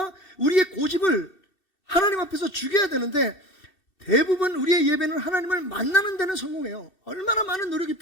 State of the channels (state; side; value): late; right; 2.7 ms